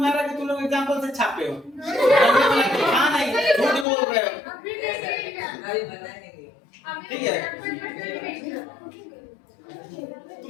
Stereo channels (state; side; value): drops out; right; at 3.9 s